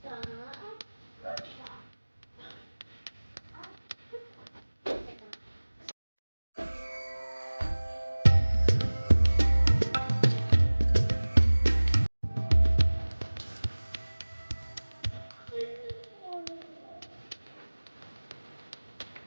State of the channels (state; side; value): inverted; both; correlation -1.00